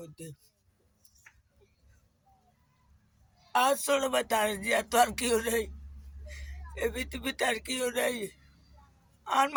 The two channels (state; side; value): identical; both; correlation 1.00